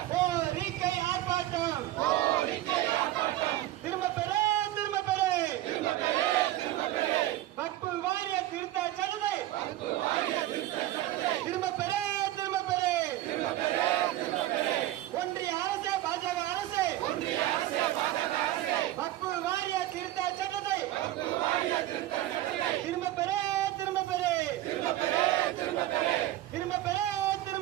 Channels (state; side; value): quieter; left; 14.9 dB